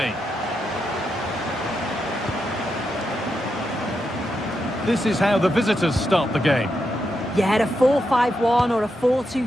This is how the visitors start the game. Yeah, a 4-5-1 or a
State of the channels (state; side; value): normal; both; correlation 0.84